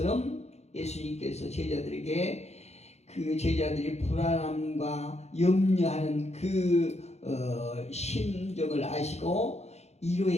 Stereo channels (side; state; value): right; late; 0.32 ms